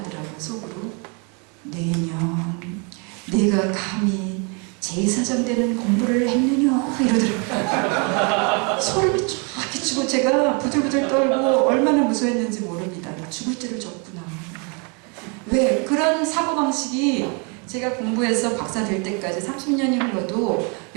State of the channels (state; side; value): quieter; left; 34.4 dB